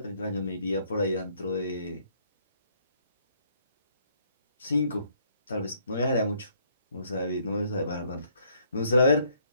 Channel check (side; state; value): both; inverted; correlation -0.67